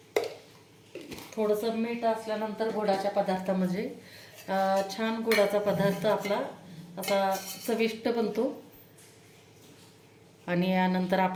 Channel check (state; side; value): identical; both; correlation 1.00